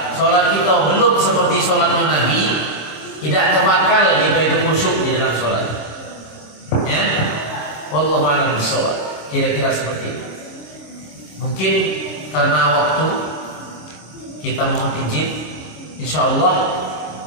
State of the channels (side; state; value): right; late; 26 ms